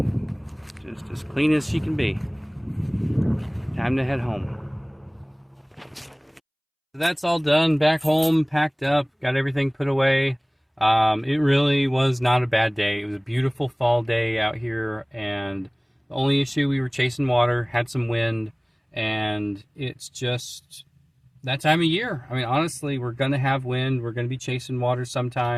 Just as clean as she can be. Time to head home. That's all done, back home, packed up, got everything put away. It really was not a bad day. It was a beautiful fall day out here, and the only issue, we were chasing water, had some wind, and it's just that time of year. I mean, honestly, we're going to have wind, we're going to be chasing water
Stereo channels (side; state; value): both; identical; correlation 1.00